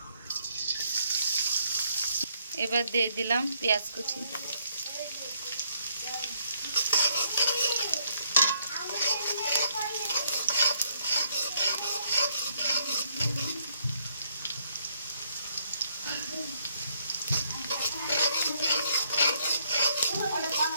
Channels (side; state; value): both; inverted; correlation -0.70